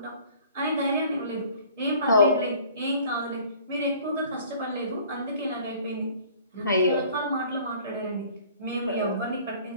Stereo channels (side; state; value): both; inverted; correlation -0.51